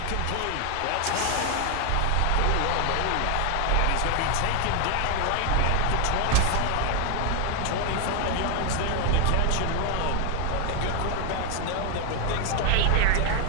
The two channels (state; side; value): different; both; correlation 0.01